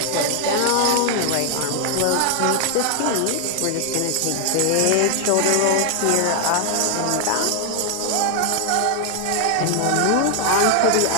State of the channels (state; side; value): different; both; correlation 0.00